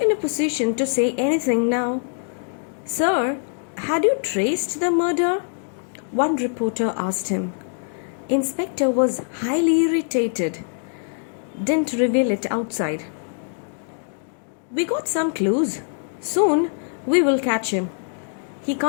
a position to say anything now. Sir, had you traced the murder? One reporter asked him. Inspector was highly irritated. didn't reveal it outside. We got some clues. Soon we will catch him. He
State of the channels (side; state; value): right; silent; digital silence